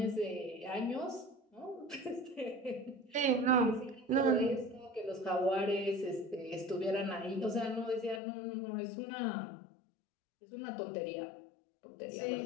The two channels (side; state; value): right; drops out; at 8.2 s